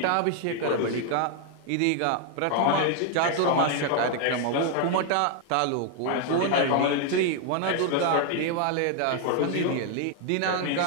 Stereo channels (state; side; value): different; both; correlation 0.00